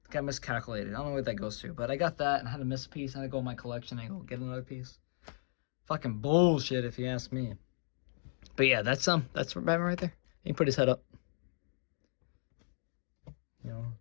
Got miscalculated. I don't know what that goes to, but I got that and I had to miss a piece. I had to go in my collection and go get another piece. Fucking bullshit, if you ask me. But yeah, that's Batman right there. He can put his head up. You know,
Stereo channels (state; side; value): silent; right; digital silence